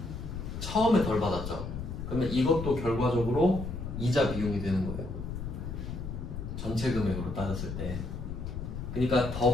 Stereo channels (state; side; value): noise; left; rumble, 6 dB below the sound